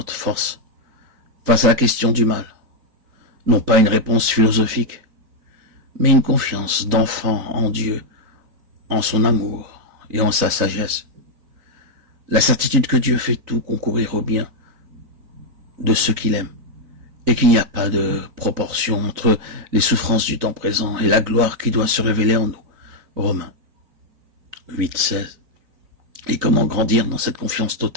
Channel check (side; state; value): left; late; 3.9 ms